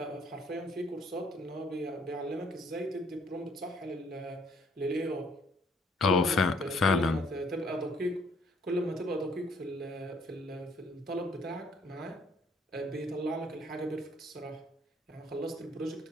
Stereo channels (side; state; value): both; normal; correlation 0.63